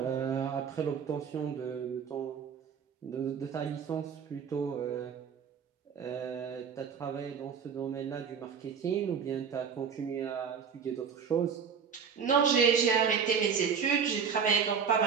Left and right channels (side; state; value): left; quieter; 6.7 dB